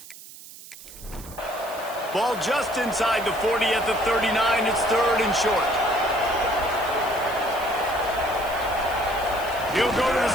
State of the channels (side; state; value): right; noise; hiss, 17 dB below the sound